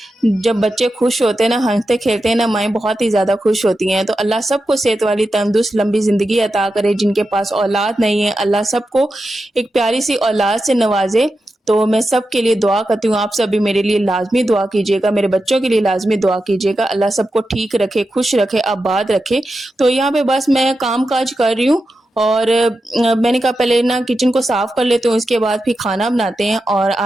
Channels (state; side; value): normal; both; correlation 0.90